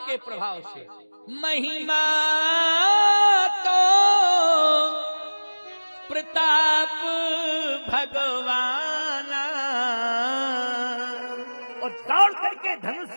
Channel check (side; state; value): both; inverted; correlation -1.00